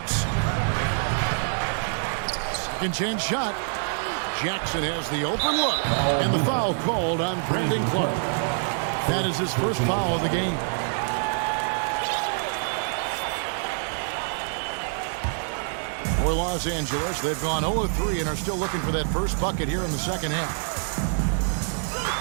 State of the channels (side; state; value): left; silent; 61 dB below the other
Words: Second chance shot. Jackson has the open look. And the foul called on Brandon Clark. That is his first foul of the game. For Los Angeles, they've gone 0-3 and are still looking for that first bucket here in the second half.